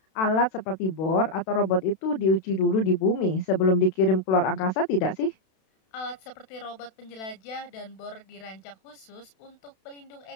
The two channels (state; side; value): late; right; 32 ms